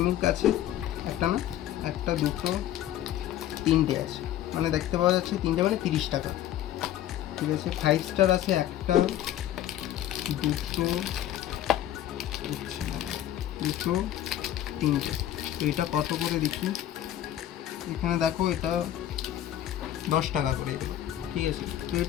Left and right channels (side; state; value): right; quieter; 12.1 dB